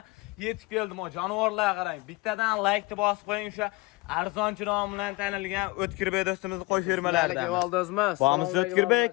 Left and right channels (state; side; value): quieter; right; 23.4 dB